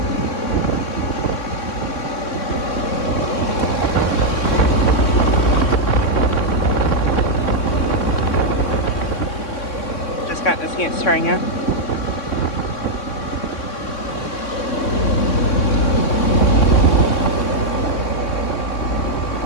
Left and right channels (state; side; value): late; right; 3.6 ms